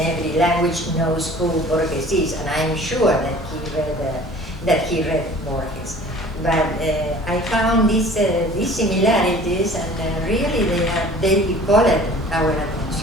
language knows who Borges is, and I'm sure that he read Borges. But I found these similarities, and really they called our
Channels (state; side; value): normal; both; correlation 0.47